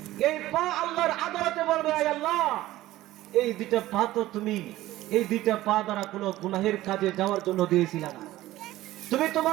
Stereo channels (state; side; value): quieter; left; 16.0 dB